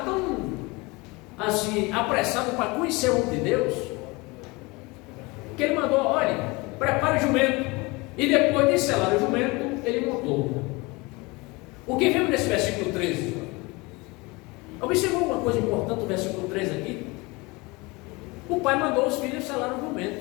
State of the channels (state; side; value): quieter; right; 24.9 dB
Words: tão assim, apressado para conhecer o homem de Deus, que ele mandou: olha, prepare o jumento. E depois de selar o jumento, ele montou. O que vemos nesse versículo 13? Observou uma coisa importante no versículo 13 aqui? O pai mandou os filhos selar o